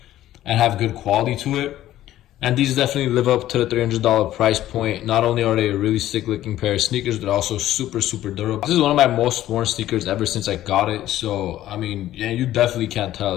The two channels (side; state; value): right; quieter; 13.6 dB